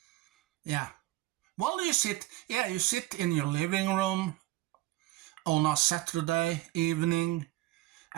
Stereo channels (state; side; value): quieter; left; 17.7 dB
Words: Yeah. Well, you sit in your living room on a Saturday evening